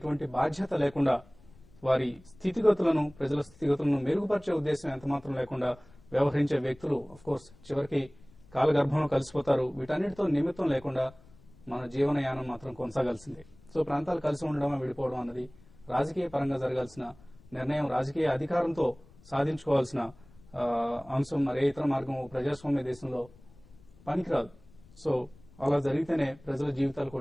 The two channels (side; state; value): left; noise; rumble, 25 dB below the sound